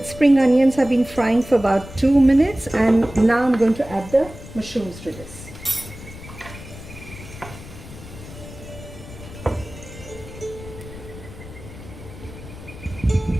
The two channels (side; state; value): left; noise; rumble, 15 dB below the sound